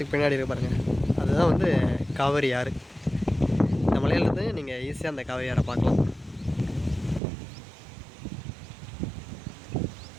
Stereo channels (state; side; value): drops out; left; at 7.2 s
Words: பின்னாடி இருக்க பாருங்கள், அதுதான் வந்து காவிரி ஆறு. இந்த மலையிலேருந்து நீங்கள் ஈஸியாக அந்த காவிரி ஆறை பார்க்கலாம்.